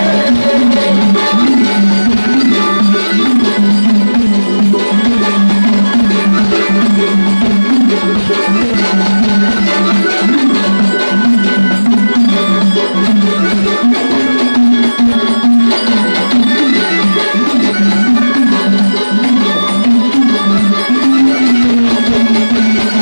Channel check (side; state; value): both; inverted; correlation -1.00